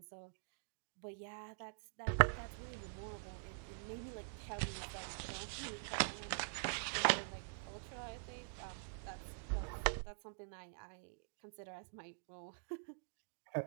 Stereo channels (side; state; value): left; silent; digital silence